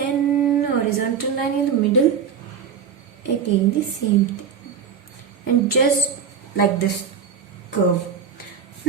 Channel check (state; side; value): quieter; left; 7.0 dB